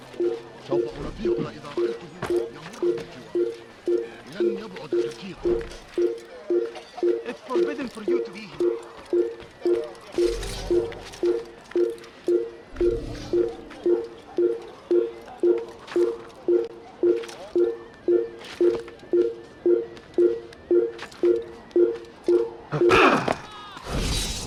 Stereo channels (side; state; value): both; identical; correlation 1.00